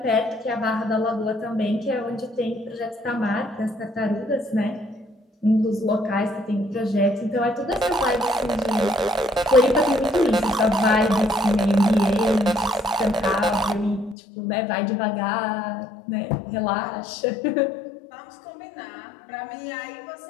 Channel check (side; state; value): right; drops out; at 14.2 s